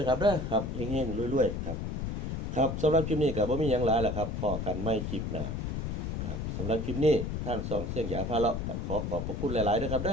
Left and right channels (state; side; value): noise; left; rumble, 3 dB below the sound